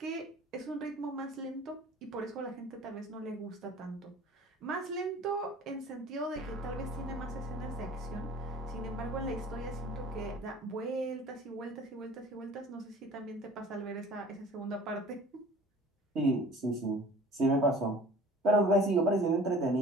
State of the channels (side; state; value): both; normal; correlation 0.46